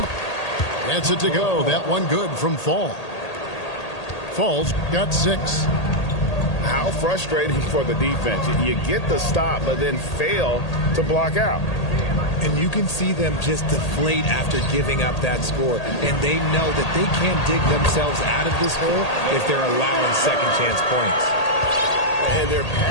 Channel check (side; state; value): right; late; 1.8 ms